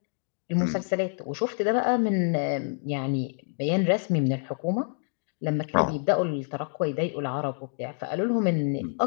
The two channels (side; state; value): right; silent; 58 dB below the other